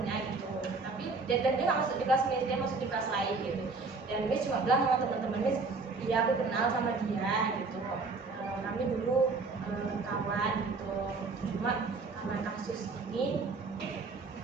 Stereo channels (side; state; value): left; quieter; 4.0 dB